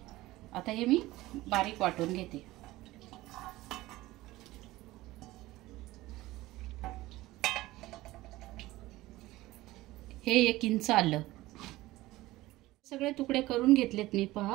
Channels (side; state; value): left; quieter; 18.0 dB